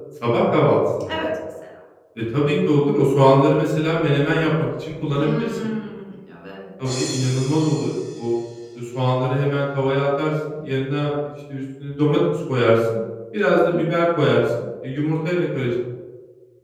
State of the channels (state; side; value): identical; both; correlation 1.00